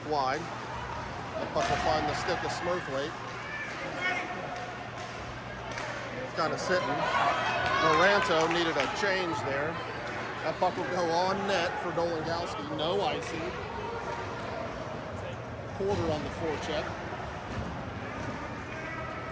wide. The puck will find the stick of Smurthwaite. Kind of sitting. Moranto needed a change there. That puck will go on net for Dolingowski. No icing. Porter on the forecheck.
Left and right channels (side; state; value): both; identical; correlation 1.00